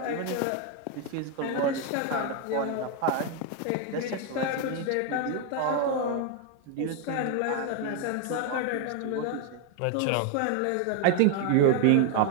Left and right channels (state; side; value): different; both; correlation 0.01